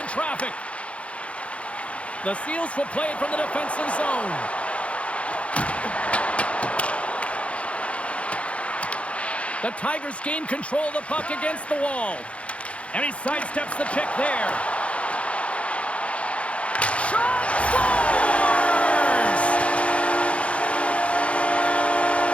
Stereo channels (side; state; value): right; late; 0.062 ms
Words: traffic. The Seals will play it from the defensive zone. The Tigers gain control of the puck against the wall. And he sidesteps the check there. Shot! Scores!